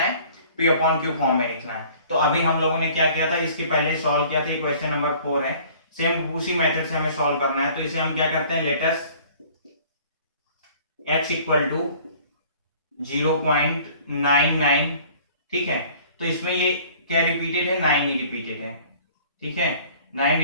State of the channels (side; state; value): both; inverted; correlation -0.51